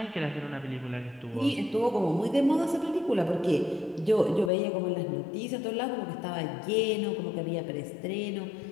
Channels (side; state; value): right; drops out; at 4.5 s